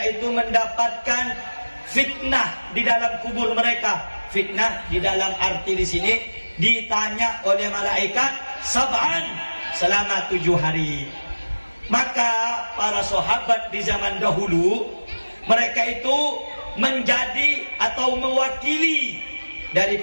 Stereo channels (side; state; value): both; inverted; correlation -1.00